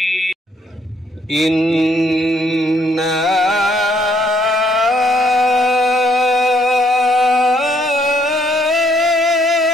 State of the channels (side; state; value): both; normal; correlation 0.68